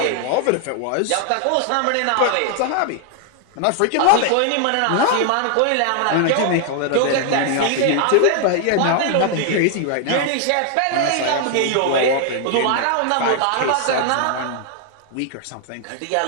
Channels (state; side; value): different; both; correlation 0.00